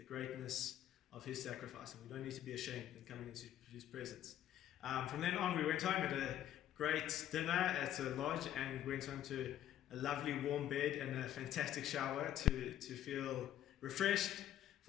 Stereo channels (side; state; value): right; quieter; 11.4 dB